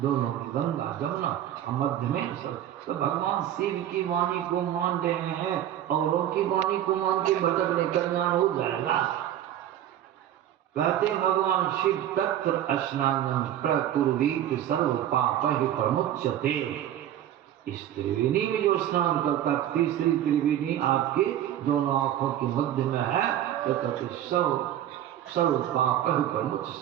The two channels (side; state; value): left; quieter; 11.5 dB